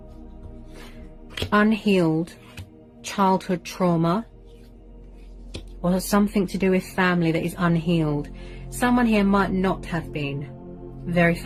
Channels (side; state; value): both; identical; correlation 1.00